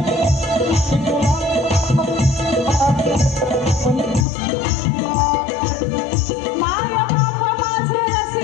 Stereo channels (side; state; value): right; drops out; at 4.2 s